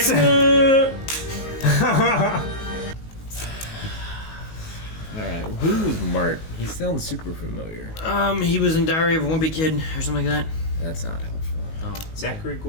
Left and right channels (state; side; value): late; right; 19 ms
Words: like, Alright, who was Mart? He sounds super familiar. He was in Diary of a Wimpy Kid or something like that. That's not helpful. Oh, Zachary